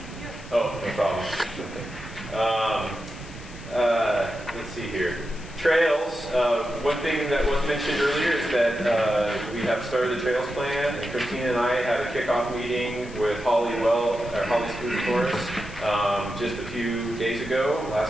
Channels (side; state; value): left; noise; hiss, 21 dB below the sound